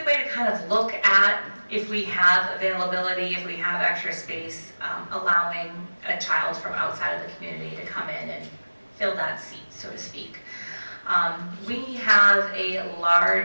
way to kind of look at if we have availability, if we have extra space, allowing a child from outside of the community to come in and fill that seat, so to speak. We have a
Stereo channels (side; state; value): both; inverted; correlation -1.00